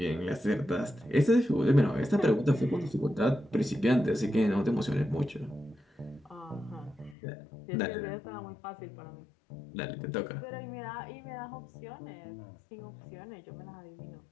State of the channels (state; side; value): drops out; right; at 7.2 s